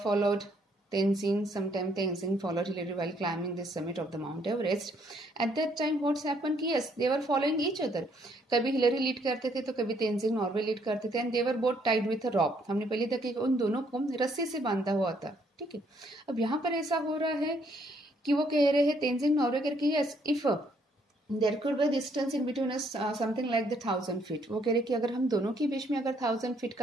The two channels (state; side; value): normal; both; correlation 0.68